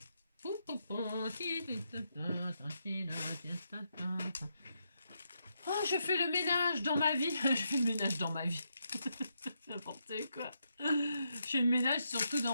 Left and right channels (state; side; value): inverted; both; correlation -0.81